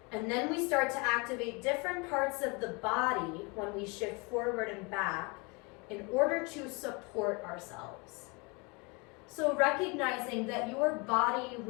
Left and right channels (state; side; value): quieter; right; 29.4 dB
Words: And then we start to activate different parts of the body when we shift forward and back in order to support ourselves. So recognizing that your body